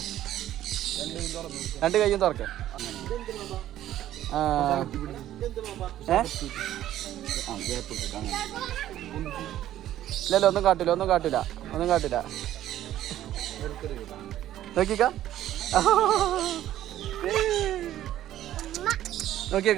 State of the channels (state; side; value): quieter; left; 12.7 dB